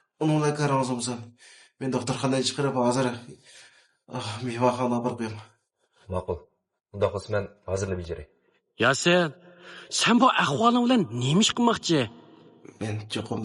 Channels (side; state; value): both; identical; correlation 1.00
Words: uningla qarangizmi? Men doktorxonadan chiqarib hozir mehmonxonaga borib qo'yaman. Ma'qul. Unda qilsa men hozirlab bejaray. Yasin, sen bu ahvoling bilan nima ish qilmoqchi? Men cho'qim